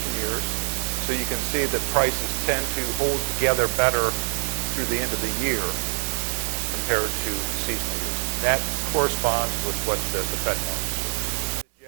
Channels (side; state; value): left; silent; digital silence